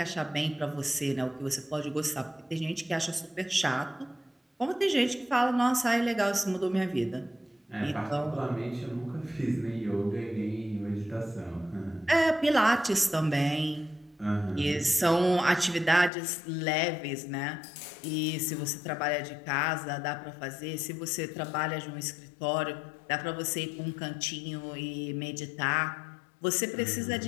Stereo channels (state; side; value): drops out; right; at 16.1 s